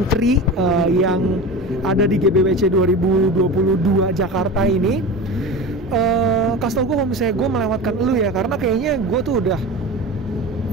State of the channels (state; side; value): normal; both; correlation 0.30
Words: yang ada di GBWC 2022 Jakarta ini. Kasih tau gue kalau misalnya gue melewatkan lu ya, karena kayaknya gue tuh udah